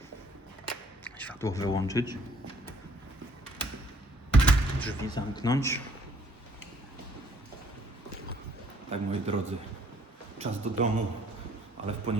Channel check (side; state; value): both; normal; correlation 0.62